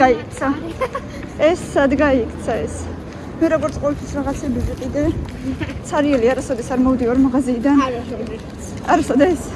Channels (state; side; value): identical; both; correlation 1.00